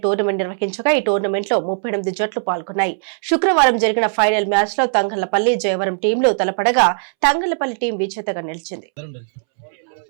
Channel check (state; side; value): silent; left; 66 dB below the other